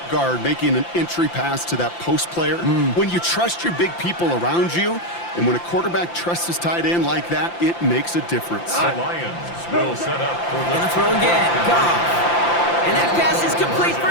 guard making an entry pass to that post player. When you trust your big people around you, and when a quarterback trusts his tight end like that, it makes a difference. The Lions will set up for the Gonna throw again. Goff. And that pass is complete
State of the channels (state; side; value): late; right; 5.8 ms